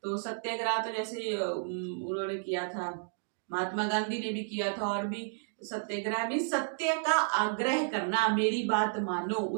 तो सत्याग्रह तो जैसे उन्होंने किया था, महात्मा गांधी ने भी किया था, और भी सत्याग्रह में सत्य का आग्रह करना, मेरी बात मानो,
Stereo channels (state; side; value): silent; left; digital silence